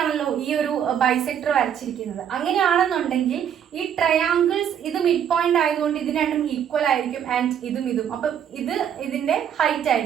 ഈ ഒരു ബൈസെക്ടർ വരച്ചിരിക്കുന്നത്. അങ്ങനെയാണെന്നുണ്ടെങ്കിൽ ഈ ട്രയാങ്കിൾസ് ഇത് മിഡ് പോയിന്റ് ആയതുകൊണ്ട് ഇത് രണ്ടും ഈക്വൽ ആയിരിക്കും. ആൻഡ് ഇതും അപ്പം ഇത് ഇതിന്റെ ഹൈറ്റ്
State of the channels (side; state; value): left; quieter; 9.0 dB